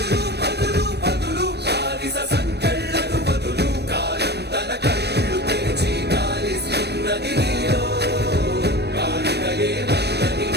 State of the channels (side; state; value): left; late; 0.48 ms